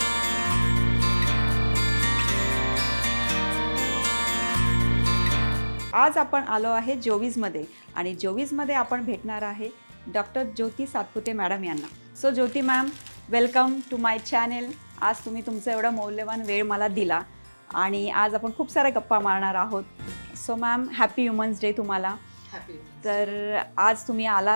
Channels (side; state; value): both; inverted; correlation -1.00